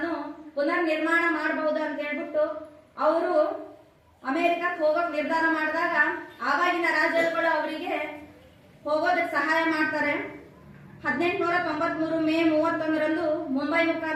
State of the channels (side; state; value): both; identical; correlation 1.00